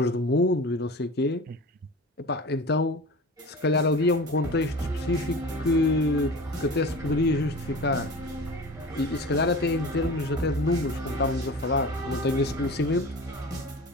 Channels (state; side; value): normal; both; correlation 0.35